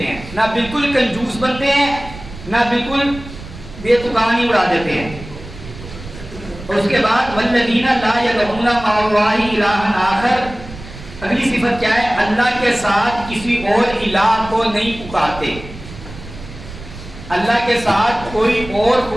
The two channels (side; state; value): right; noise; rumble, 14 dB below the sound